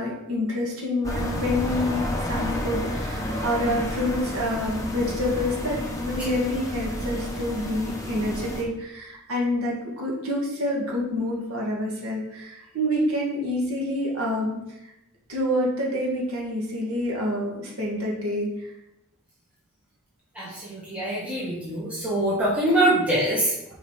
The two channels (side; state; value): both; normal; correlation 0.42